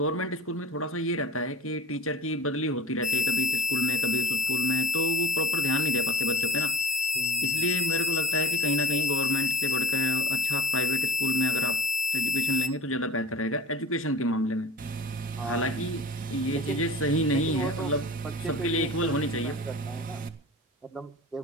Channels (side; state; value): both; normal; correlation 0.41